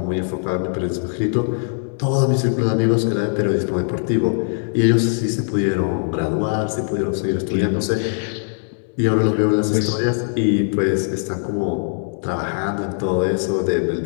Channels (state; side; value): silent; right; digital silence